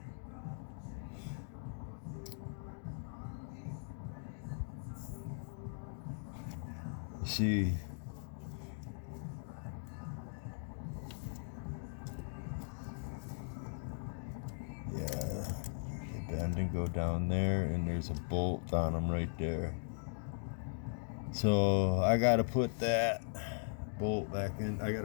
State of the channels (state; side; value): silent; right; digital silence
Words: You see, bend and go down there, and there's a bolt on them right there. So I gotta put that bolt back in. I